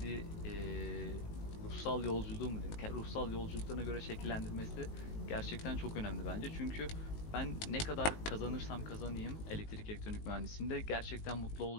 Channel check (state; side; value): late; right; 19 ms